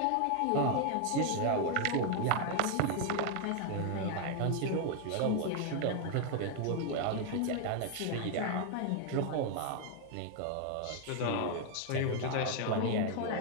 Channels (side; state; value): both; different; correlation 0.00